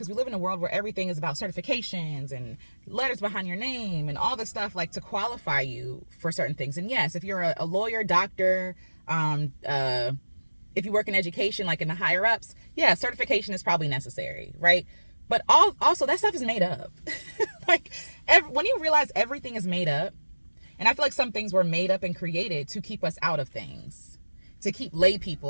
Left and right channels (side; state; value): both; inverted; correlation -1.00